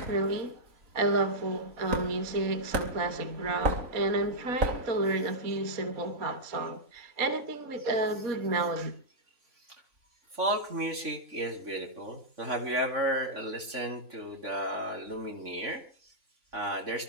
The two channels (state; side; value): late; left; 3.6 ms